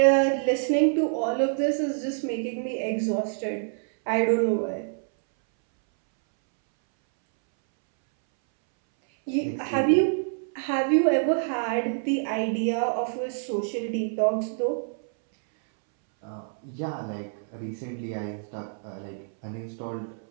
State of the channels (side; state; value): left; silent; 60 dB below the other